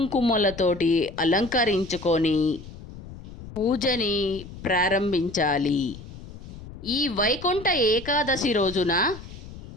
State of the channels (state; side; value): noise; left; rumble, 14 dB below the sound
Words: అలంకరించుకొని పూజని ప్రారంభించాలి. ఈ వైకుంఠ ఏకాదశి రోజున